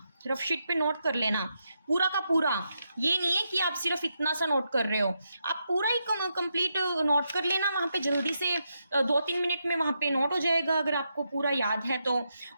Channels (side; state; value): both; inverted; correlation -0.83